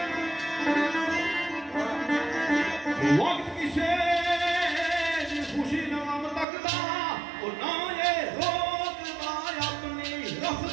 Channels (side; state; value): left; drops out; at 6.5 s